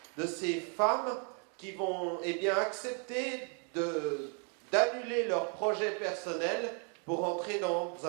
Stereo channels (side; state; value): left; quieter; 40.0 dB